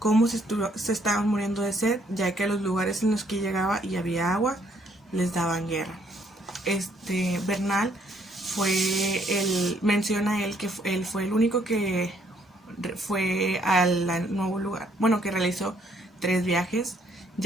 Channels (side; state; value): both; normal; correlation 0.67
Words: se estaban muriendo de sed, ya que a los lugares en los que llegaba y había agua les daban guerra. Bernal menciona él que él fue el único que fue al nuevo lugar, bueno, que realizó 3 viajes,